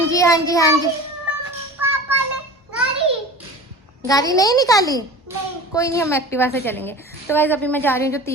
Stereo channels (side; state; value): both; normal; correlation 0.36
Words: पापा ने गाड़ी नहीं निकाली नहीं। कोई नहीं, हम एक्टिवा से चलेंगे। तो गाइस अभी मैं जा रही हूँ, जो